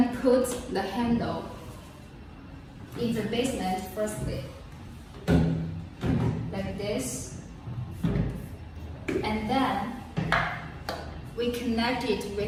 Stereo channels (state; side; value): identical; both; correlation 1.00